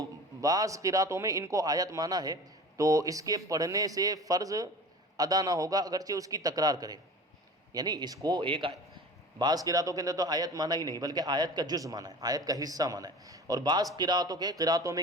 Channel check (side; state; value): both; normal; correlation 0.38